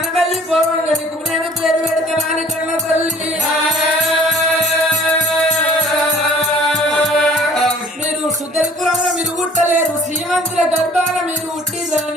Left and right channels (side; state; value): both; normal; correlation 0.52